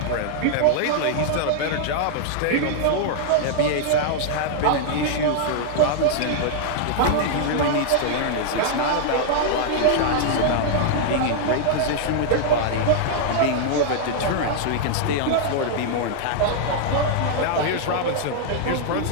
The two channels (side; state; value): both; different; correlation -0.01